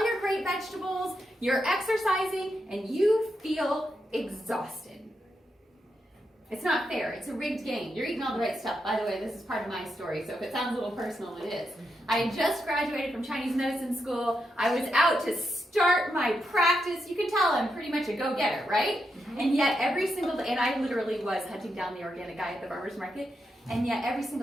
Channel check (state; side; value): normal; both; correlation 0.84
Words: your great vegetables. You're exercising, and you feel exhausted. It's not fair. It's a rigged game. You're eating all the right stuff. By the way, this is part of my story, so if it sounds a little personal, it is. I just graduated from Chinese medicine school. I was out to start my practice. You can tell I'm pretty much a go-getter, right? And yet every single day, and I literally was hunting down the organic guy at the farmer's market, and yet every